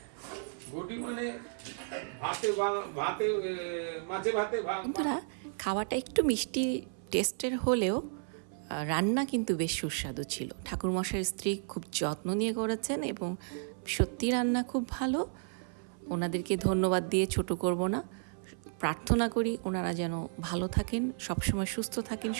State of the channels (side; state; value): left; silent; 56 dB below the other